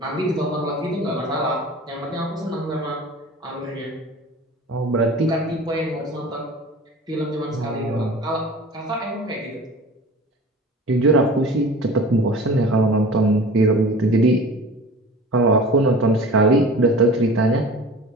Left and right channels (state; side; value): normal; both; correlation 0.39